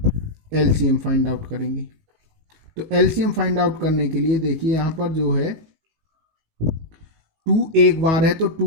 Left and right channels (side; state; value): left; late; 19 ms